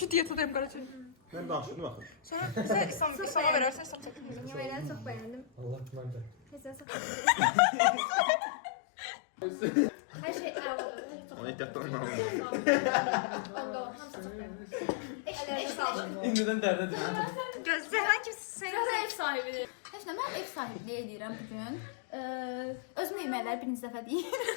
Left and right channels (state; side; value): drops out; right; at 6.9 s